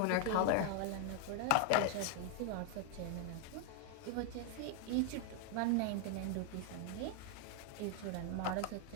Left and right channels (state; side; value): different; both; correlation 0.00